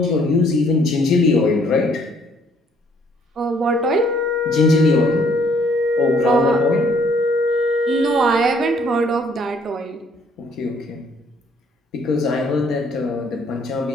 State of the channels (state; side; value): normal; both; correlation 0.64